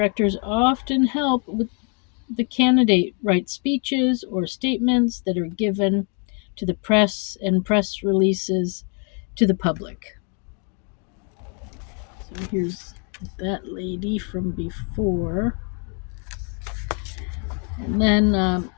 often help with the candidate write speeches or statements that are given to the press and press releases to the public. So here's that lady from before. And then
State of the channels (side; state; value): right; quieter; 38.8 dB